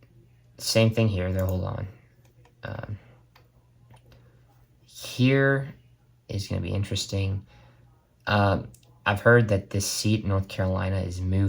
Same thing here. They'll hold on. Here is going to be interesting. I've heard that this seat in North Carolina is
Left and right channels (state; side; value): identical; both; correlation 1.00